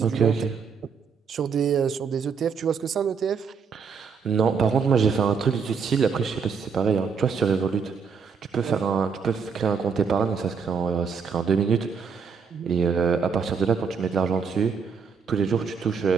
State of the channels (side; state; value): left; quieter; 5.9 dB